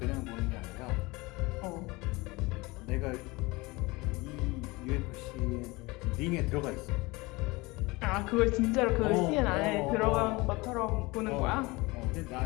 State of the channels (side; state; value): right; quieter; 23.4 dB